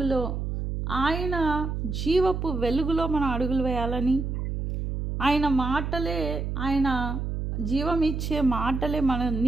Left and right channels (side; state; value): right; noise; hum, 3 dB below the sound